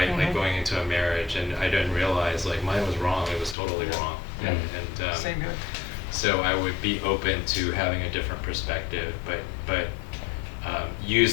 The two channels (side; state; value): right; drops out; at 3.6 s